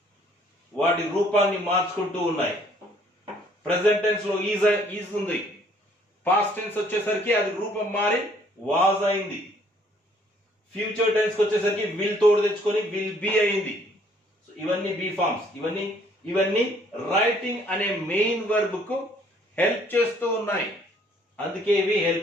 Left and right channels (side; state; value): both; normal; correlation 0.61